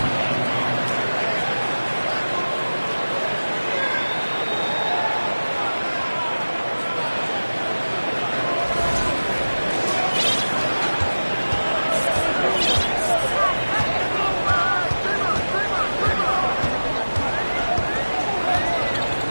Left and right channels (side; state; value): both; inverted; correlation -1.00